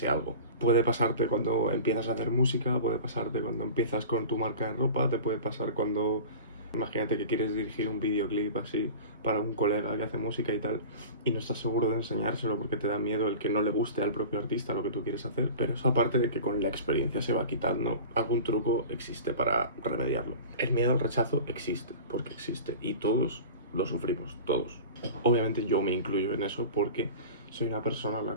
algo. Puede pasarte cuando empiezas a hacer música, puede pasarte cuando empiezas con tu marca de ropa, te puede pasar cuando, imagínate que quieres dirigir un videoclip así para un colega que hace música y tal, y no estás seguro de enseñárselo porque te da miedo el que no le guste al propio artista lo que tú quieres hacer. Pero eso, aparte de que con la experiencia se va quitando, algún truco existe para remediarlo. El miedo al rechazo existe, porque existe, y todos lo sufrimos, todos. Obviamente yo me incluyo en eso porque soy una persona a la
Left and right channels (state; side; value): inverted; both; correlation -0.36